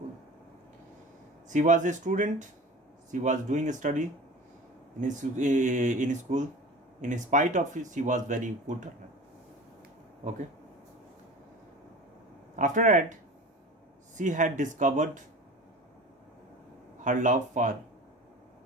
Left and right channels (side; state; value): both; normal; correlation 0.37